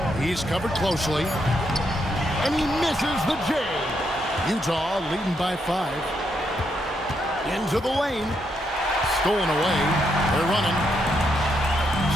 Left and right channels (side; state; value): both; normal; correlation 0.78